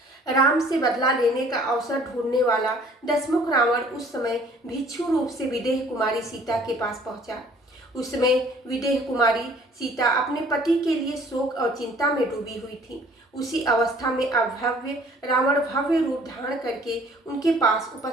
राम से बदला लेने का अवसर ढूंढने वाला दशमुख रावण उस समय भिक्षु रूप से विदेह कुमारी सीता के पास पहुंचा। उस समय विदेह कुमारी सीता अपने पति के लिए शोक और चिंता में डूबी हुई थी। उसी अवस्था में अभव्य रावण भव्य रूप धारण करके उनके पास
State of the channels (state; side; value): normal; both; correlation 0.55